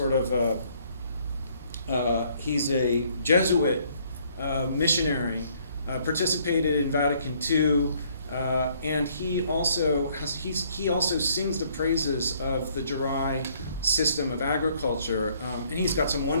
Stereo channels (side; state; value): both; inverted; correlation -0.64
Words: of he's a Jesuit missionary, participated in Vatican II, and he also sings the praises of the Jarai system of agriculture, and he's got some